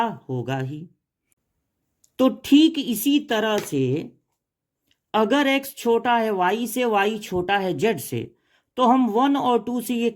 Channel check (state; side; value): identical; both; correlation 1.00